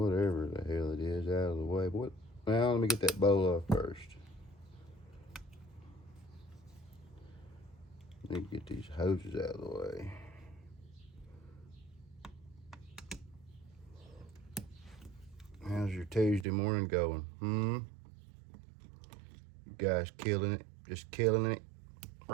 the hell it is out of the way. Well, let me get that bowl off first. Need to get these hoses out of the way. How's your Tuesday morning going? You guys killing it? Just killing it?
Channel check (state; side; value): drops out; left; at 16.4 s